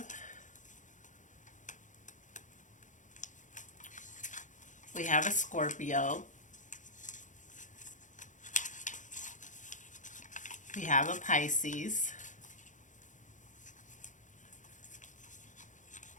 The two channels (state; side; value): late; right; 0.37 ms